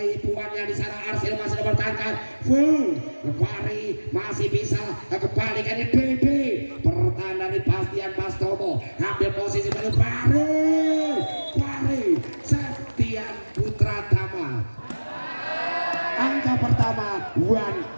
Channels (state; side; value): inverted; both; correlation -1.00